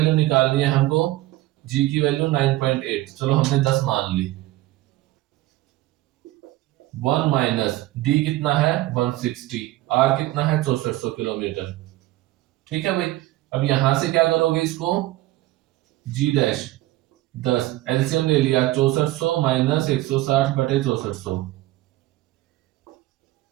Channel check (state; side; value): quieter; left; 17.0 dB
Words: निकालनी है हमको, जी की वैल्यू 9.8, चलो हमने 10 मान ली, 1 माइनस डी कितना है 160, आर कितना है 6400 किलोमीटर। ठीक है भाई। अब यहां से क्या करोगे इसको, जी डैश 10 एलसीएम ले लिया 6400 माइनस 160 बटे 6400।